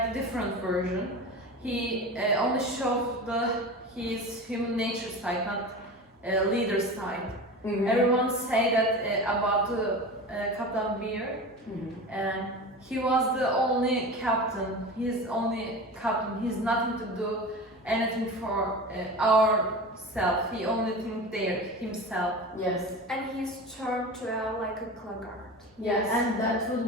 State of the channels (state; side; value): normal; both; correlation 0.31